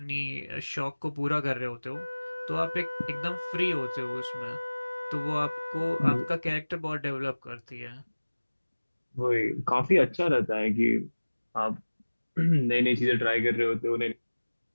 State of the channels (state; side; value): inverted; both; correlation -1.00